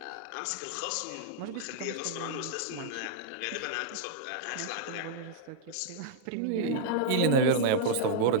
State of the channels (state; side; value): different; both; correlation -0.02